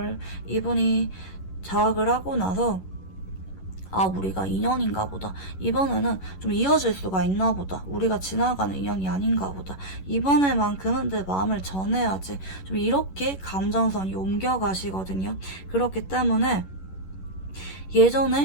이분이 자학을 하고 나서 우리가 인연인가 보다. 이번에는 좀 이어질 수가 있나 보다. 우리가 지나가는 인연이 아닌가 보다. 이번에만큼은 내 마음을 전해야지. 좀 이렇게 감정선이 옮겨가시거든요. 그렇기 때문에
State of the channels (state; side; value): late; right; 11 ms